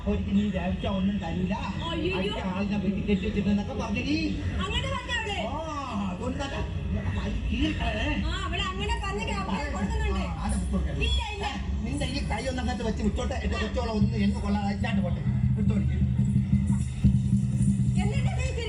നീ വേവിച്ച ഒന്നും തരൂല ആളിനെ വീട്ടിൽ കെട്ടി വെച്ചിട്ടെന്നൊക്കെ പറഞ്ഞടി. അതുകൊണ്ട് നിന്റെ ഈ കൈ ഒന്നങ്ങനത്ത് വെച്ച് വിട്ടോട്ടെ. എന്റെ കൊച്ചോളം ഒന്ന് എന്ന് കൊള്ളാതെ പോട്ടെ വിട്ടോടിക്കും.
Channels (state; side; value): identical; both; correlation 1.00